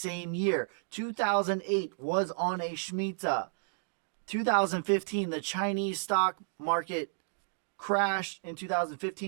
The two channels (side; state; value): left; silent; digital silence